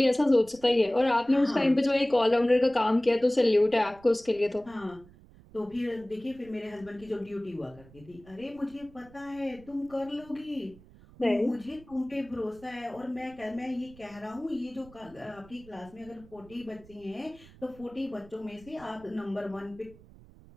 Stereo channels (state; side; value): noise; right; rumble, 23 dB below the sound